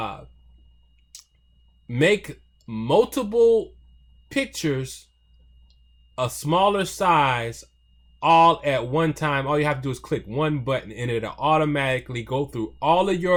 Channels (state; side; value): identical; both; correlation 1.00